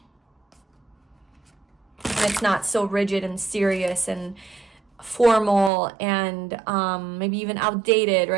And it's not so rigid and serious and formal and maybe even outdated,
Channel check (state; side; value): drops out; left; at 5.7 s